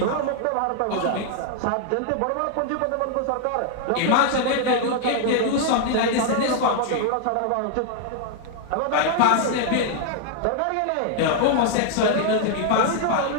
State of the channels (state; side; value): different; both; correlation 0.00